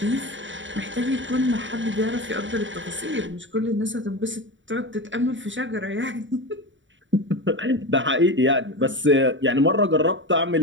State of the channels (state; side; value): late; left; 0.55 ms